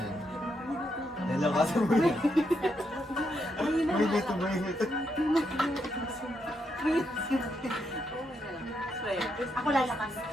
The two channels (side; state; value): both; normal; correlation 0.80